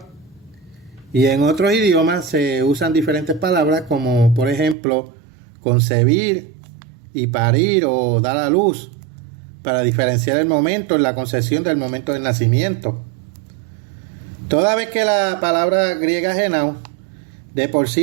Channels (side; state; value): left; drops out; at 4.8 s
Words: y en otros idiomas se usan diferentes palabras como, por ejemplo, concebir y parir o dar a luz, para diferenciar el momento en la concepción del momento del nacimiento. Toda vez que la palabra griega genao de por